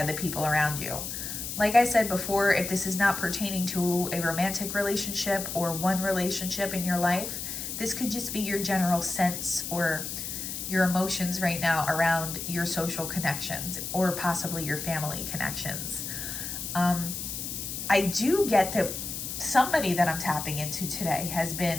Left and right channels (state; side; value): noise; left; hiss, 6 dB below the sound